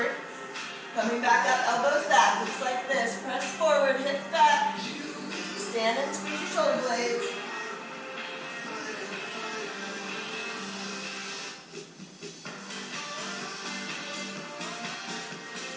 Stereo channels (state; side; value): identical; both; correlation 1.00